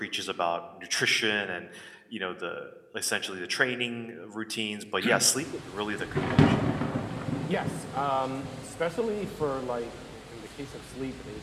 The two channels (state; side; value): identical; both; correlation 1.00